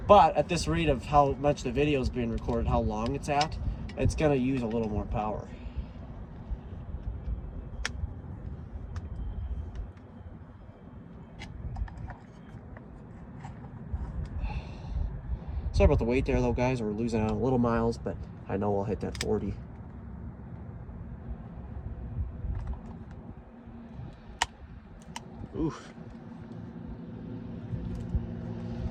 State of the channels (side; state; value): both; identical; correlation 1.00